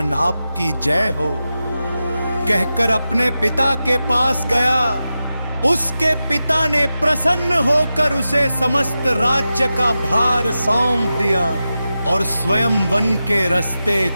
आपकी जय हो कहकर अपने पिता के पास गया। उसके पिता ने प्रसन्न होकर उसे समस्त राज्य का भार सौंप दिया और स्वयं वन के रास्ते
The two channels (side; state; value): both; inverted; correlation -0.92